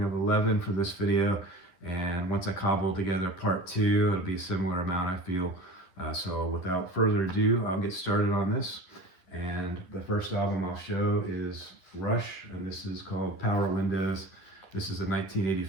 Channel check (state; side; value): late; right; 11 ms